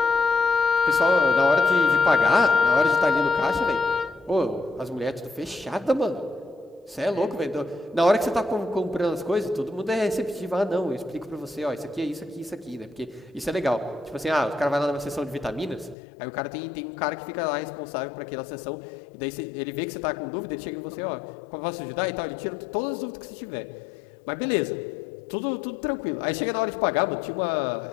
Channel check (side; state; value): right; drops out; at 16.0 s